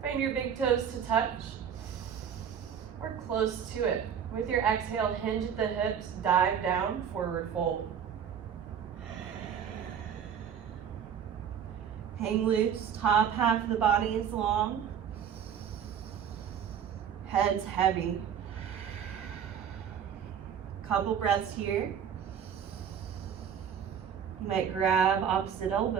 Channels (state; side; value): quieter; left; 8.3 dB